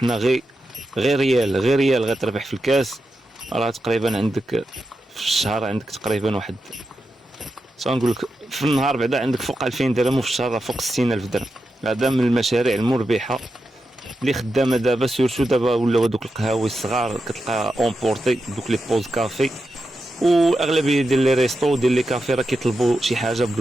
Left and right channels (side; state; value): both; normal; correlation 0.88